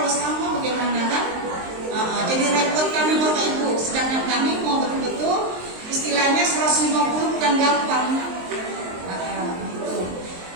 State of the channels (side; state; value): left; late; 23 ms